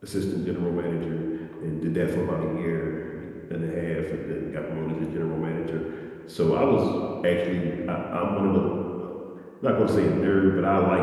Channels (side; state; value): both; identical; correlation 1.00